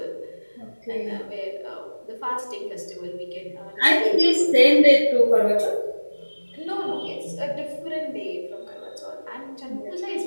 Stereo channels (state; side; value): inverted; both; correlation -1.00